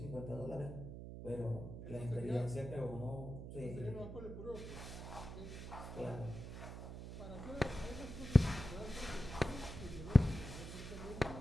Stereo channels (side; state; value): right; noise; hum, 9 dB below the sound